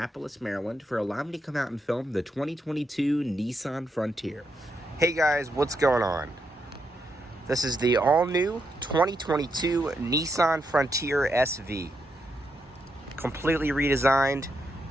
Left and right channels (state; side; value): normal; both; correlation 0.81